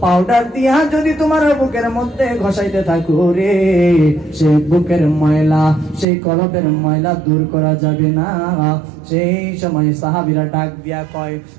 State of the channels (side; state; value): left; drops out; at 6.1 s